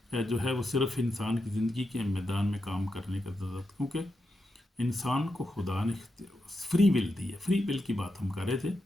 جو ہے وہ صرف انسان کی زندگی کے میدان میں کام کرنے کا ضرورت، کیونکہ انسان کو خدا نے فری ول دی ہے. فری ول کی بات ہم کر رہے تھے،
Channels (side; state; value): both; normal; correlation 0.86